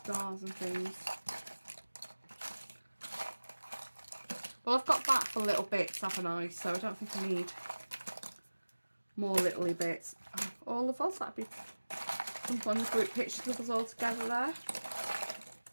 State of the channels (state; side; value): inverted; both; correlation -1.00